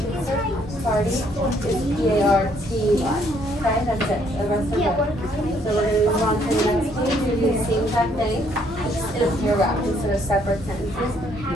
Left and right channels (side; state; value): both; normal; correlation 0.67